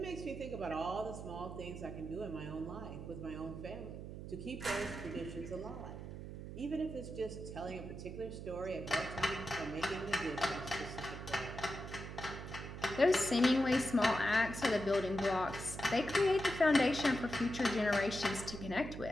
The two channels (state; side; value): noise; right; hum, 9 dB below the sound